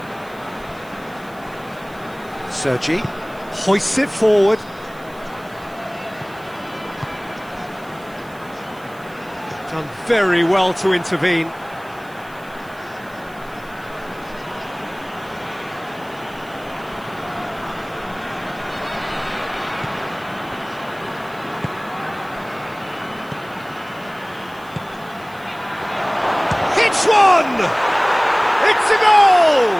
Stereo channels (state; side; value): noise; right; hiss, 25 dB below the sound